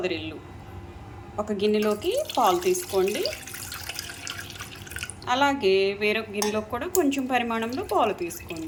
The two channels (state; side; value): identical; both; correlation 1.00